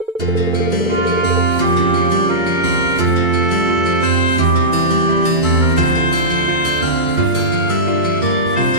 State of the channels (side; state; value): left; late; 2.3 ms